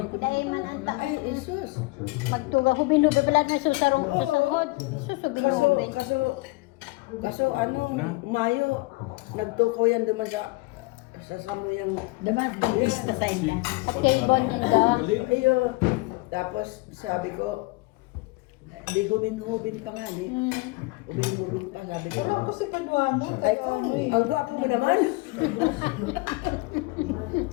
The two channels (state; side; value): quieter; right; 23.7 dB